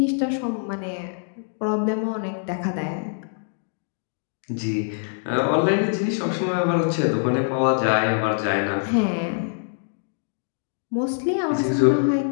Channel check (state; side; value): silent; right; digital silence